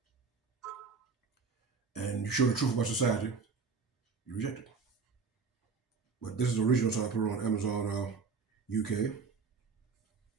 and you show the truth about society, you reject it. But this is the original, so I put it on Amazon UK.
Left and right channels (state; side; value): quieter; left; 4.9 dB